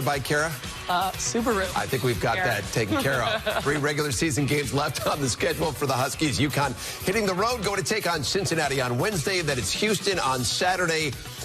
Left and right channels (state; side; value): identical; both; correlation 1.00